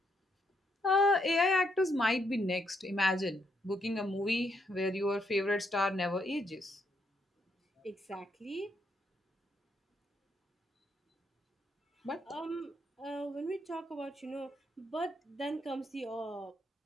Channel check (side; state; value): both; normal; correlation 0.76